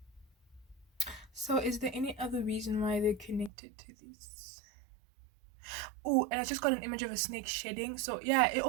So, is there any other reason why they're connected to this? Oh, and I just got an image of a snake shedding. So yeah, it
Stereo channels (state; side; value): drops out; left; at 3.5 s